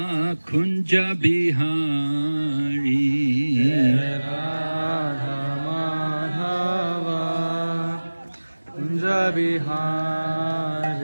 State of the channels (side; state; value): both; inverted; correlation -1.00